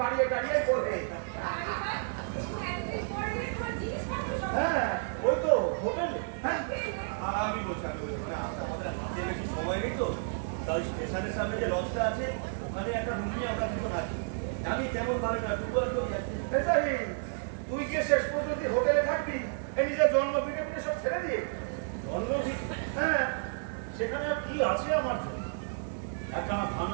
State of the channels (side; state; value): left; silent; 57 dB below the other